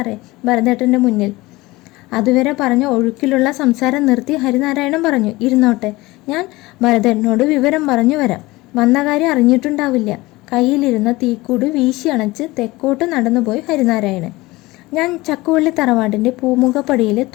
ഭരതേട്ടൻ്റെ മുന്നിൽ. അതുവരെ പറഞ്ഞ ഒഴുക്കിലുള്ള സംസാരം നിർത്തി ഹരിനാരായണൻ പറഞ്ഞു, ഇരുന്നോട്ടെ, ഞാൻ ഭരതേട്ടനോട് വിവരം പറഞ്ഞു വരാം. വന്ന കാര്യം അറിഞ്ഞിട്ടുണ്ടാവില്ല. കയ്യിലിരുന്ന തീക്കൂട് വീശി അണച്ച് തെക്കോട്ട് നടന്നുപോയി ഹരിനാരായണൻ. ഞാൻ ചക്കുവള്ളി തറവാടിൻ്റെ പൂമുഖപ്പടിയിൽ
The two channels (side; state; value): right; quieter; 20.5 dB